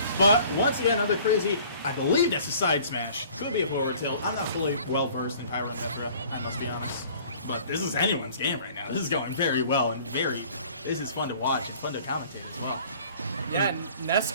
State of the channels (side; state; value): both; inverted; correlation -0.51